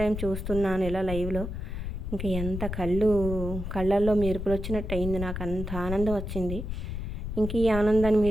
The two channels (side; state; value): left; noise; rumble, 5 dB below the sound